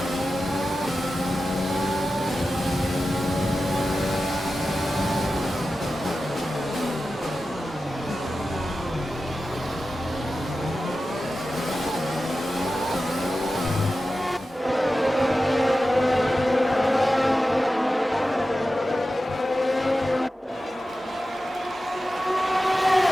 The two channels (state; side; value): normal; both; correlation 0.93